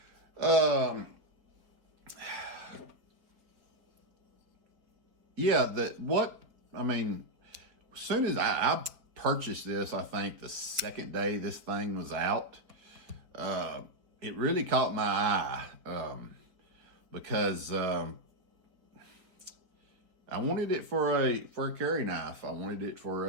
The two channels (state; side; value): late; left; 4.6 ms